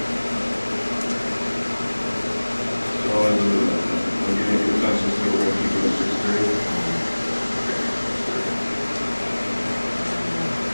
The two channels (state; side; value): inverted; both; correlation -1.00